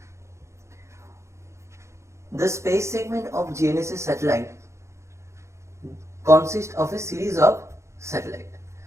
The space segment of GNSS satellite consists of a series of satellites.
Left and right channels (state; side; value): late; left; 0.14 ms